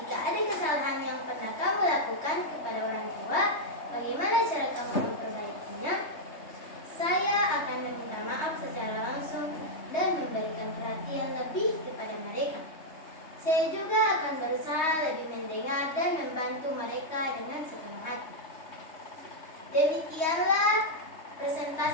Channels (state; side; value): late; right; 3.2 ms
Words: jika ada kesalahan yang pernah kamu lakukan kepada orang tua, bagaimana cara kamu memperbaikinya? Saya akan meminta maaf secara langsung dan memberikan perhatian lebih kepada mereka. Saya juga akan berusaha lebih mendengar dan membantu mereka dengan sepenuh hati. Demikianlah